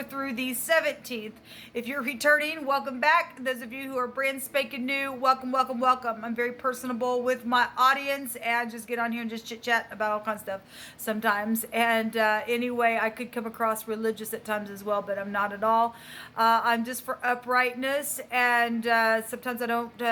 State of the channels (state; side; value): identical; both; correlation 1.00